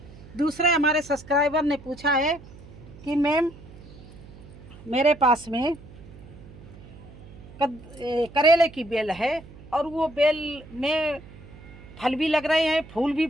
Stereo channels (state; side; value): noise; right; hum, 19 dB below the sound